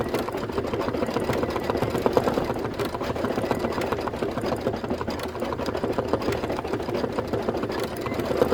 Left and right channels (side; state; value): both; identical; correlation 1.00